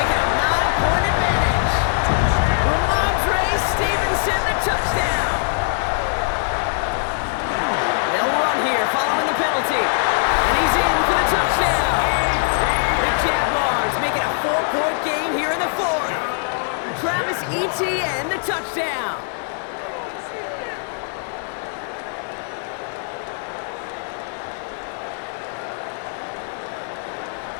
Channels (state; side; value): silent; right; digital silence